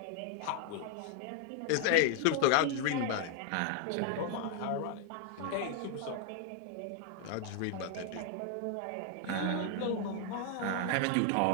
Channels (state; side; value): different; both; correlation 0.00